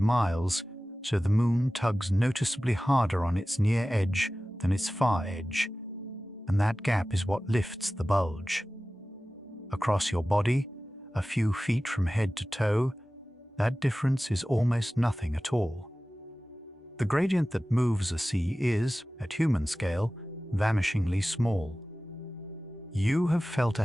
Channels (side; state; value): both; normal; correlation 0.96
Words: so the Moon tugs noticeably harder on its near edge than its far edge, and that gap is what lifts the bulge. Across your body, a few feet from head to toe, that difference is almost nothing at all. The gradient that moves a sea is, at human scale, vanishingly small. You have felt a